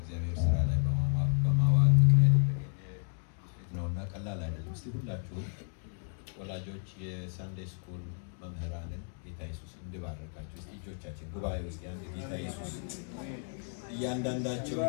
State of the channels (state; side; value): silent; right; 56 dB below the other